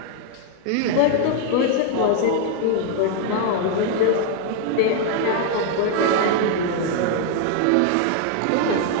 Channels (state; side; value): different; both; correlation 0.00